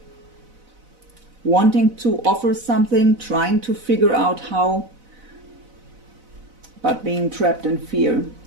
Wanting to offer something, trying to figure out how, but being trapped in fear.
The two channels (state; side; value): late; left; 4.0 ms